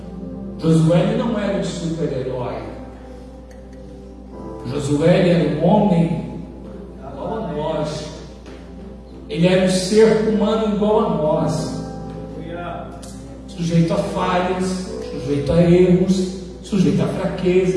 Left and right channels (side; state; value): both; identical; correlation 1.00